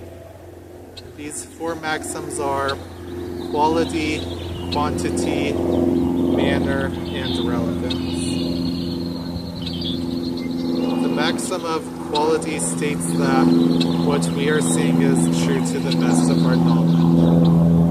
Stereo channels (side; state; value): both; identical; correlation 1.00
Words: These four maxims are quality, quantity, manner, and relevance. The maxim of quality states that what we are saying is true to the best of our knowledge.